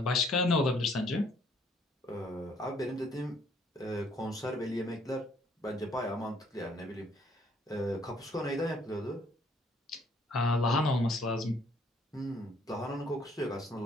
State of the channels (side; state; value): both; normal; correlation 0.64